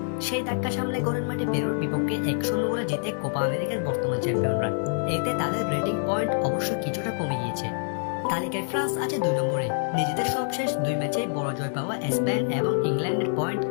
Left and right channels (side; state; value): right; silent; digital silence